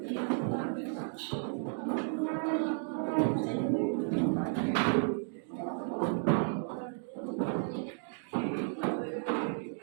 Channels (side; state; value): left; silent; 56 dB below the other